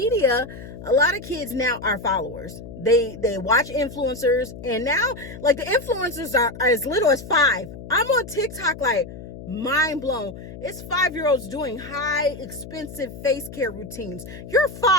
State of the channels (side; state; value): left; noise; hum, 13 dB below the sound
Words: a lot of kids now are followers. They watch influencers. And now, the influencers are as little as 5. I'm on TikTok mind blown. It's 5-year-olds doing high expensive face care routines. You're